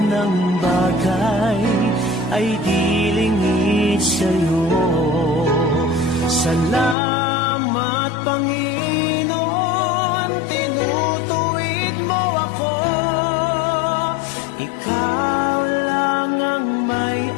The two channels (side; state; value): right; drops out; at 7.0 s